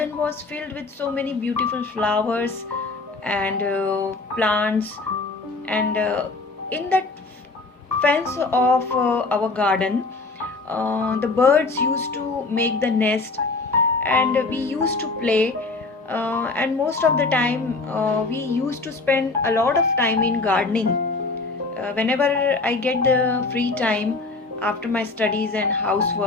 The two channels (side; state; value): right; quieter; 3.5 dB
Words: was filled with so many beautiful flowers and plants. And in that fence of our garden, the birds used to make the nest and we used to play, and most of the time we used to spend a lot of time in gardening. Whenever I get the free time after my studies and